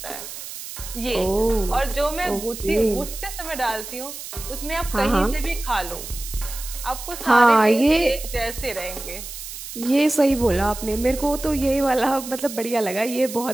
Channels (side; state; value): right; noise; hiss, 10 dB below the sound